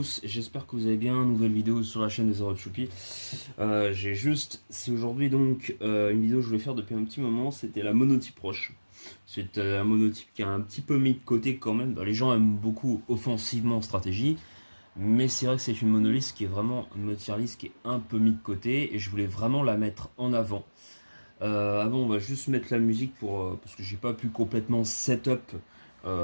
j'espère que vous allez bien, nouvelle vidéo sur la chaîne des Zero Choupi. C'est aujourd'hui donc une vidéo que je voulais faire depuis un petit moment, c'était la monotype roche. C'est un monotype qui a un petit peu mis de côté quand même. Les gens aiment beaucoup offensivement en stratégie, mais c'est vrai que c'est une monoliste qui est vraiment une tier list qui est un peu mis de côté et je voulais vraiment la mettre en avant. Avant on va juste mettre la musique parce que j'ai pas pu complètement setup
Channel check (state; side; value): inverted; both; correlation -1.00